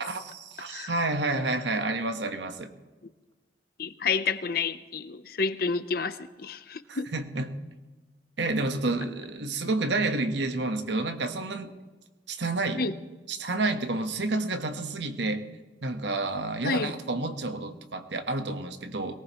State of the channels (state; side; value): normal; both; correlation 0.27